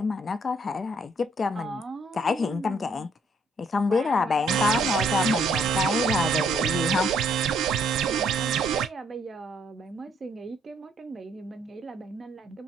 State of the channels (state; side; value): normal; both; correlation 0.67